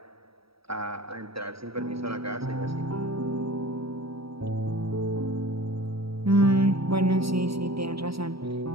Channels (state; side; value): late; left; 0.76 ms